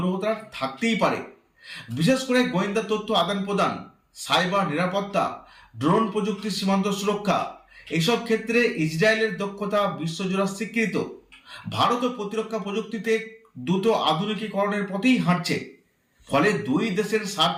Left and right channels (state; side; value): identical; both; correlation 1.00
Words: থাকতেই পারে। বিশেষ করে গোয়েন্দা তথ্য আদান প্রদান, সাইবার নিরাপত্তা, ড্রোন প্রযুক্তি, সীমান্ত সুরক্ষা, এইসব ক্ষেত্রে ইসরায়েলের দক্ষতা বিশ্বজোড়া স্বীকৃত। ভারত প্রতিরক্ষা প্রযুক্তিতে দ্রুত আধুনিকীকরণের পথেই হাঁটছে। ফলে দুই দেশের